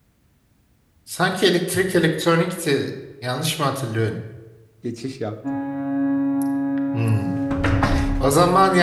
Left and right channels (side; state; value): both; identical; correlation 1.00